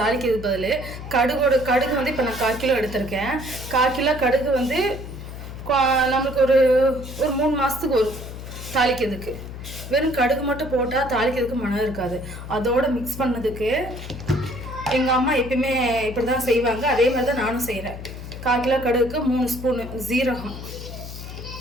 பதிலு கடுகு வந்து இப்போ நான் 1/4 கிலோ எடுத்திருக்கேன். 1/4 கிலோ கடுகு வந்து நம்மளுக்கு ஒரு 3 மாசத்துக்கு ஒரு தாளிக்கிறதுக்கு. வெறும் கடுகு மட்டும் போட்டால் தாளிக்கிறதுக்கு மனம் இருக்காது. அதோட மிக்ஸ் பண்ணதுக்கு எங்கள் அம்மா எப்பயுமே இப்படி தான் செய்வாங்க. அதே மாதிரி தான் நானும் செய்கிறேன். 1/4 கிலோ கடுகுக்கு 3 ஸ்பூன் ஜீரகம்,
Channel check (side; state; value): left; noise; hum, 10 dB below the sound